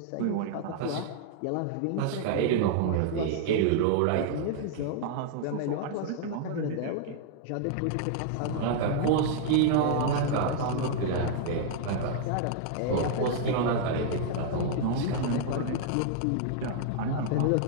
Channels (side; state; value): both; different; correlation 0.00